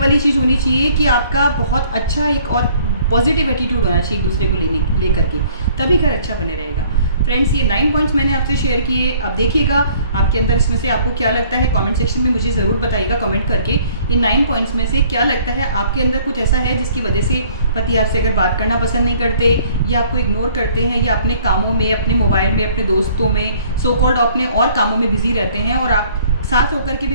चीज़ होनी चाहिए कि आपका बहुत अच्छा एक और पॉजिटिव एटीट्यूड होना चाहिए एक दूसरे को लेकर के, तभी घर अच्छा बने रहेगा। फ्रेंड्स ये 9 पॉइंट्स मैंने आपसे शेयर किए। अब देखिएगा आपके अंदर इसमें से आपको क्या लगता है, कमेंट सेक्शन में मुझे ज़रूर बताइएगा कमेंट करके, इन 9 पॉइंट्स में से क्या लगता है आपके अंदर कुछ ऐसा है जिसकी वजह से पति आपसे अगर बात करना पसंद नहीं करते, या आपको इग्नोर करते हैं, या अपने कामों में, अपने मोबाइल में, अपने दोस्तों में, सो कॉल्ड अपने और कामों में बिजी रहते हैं, और आप साथ होकर के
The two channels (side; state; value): both; inverted; correlation -0.57